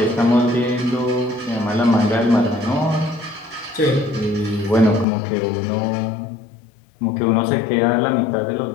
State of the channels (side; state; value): right; drops out; at 5.1 s